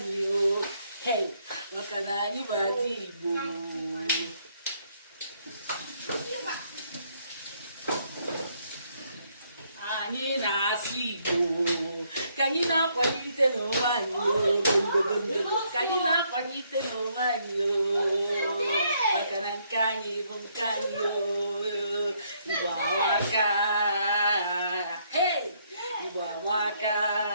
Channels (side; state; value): both; inverted; correlation -0.71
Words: maka na anyị bụ ada Igbo anyị na-asụ Igbo ka anyị na-akwalite n'onwe anyị ka anyị na-akwalite n'onwe anyị maka na nke anyị bụ nke anyị Igbo amaka Igbo amaka